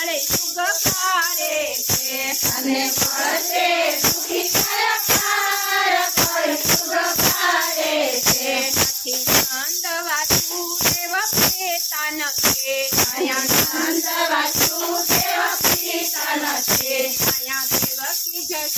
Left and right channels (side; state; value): both; identical; correlation 1.00